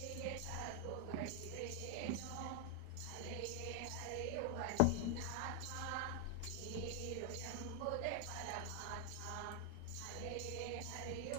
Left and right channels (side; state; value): both; different; correlation 0.00